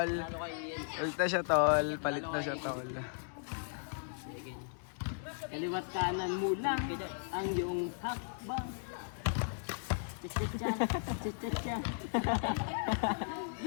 Palit na siya tol. Kaliwat kanan mo lang ang iyong hakbang. Chicha.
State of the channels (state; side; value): silent; right; digital silence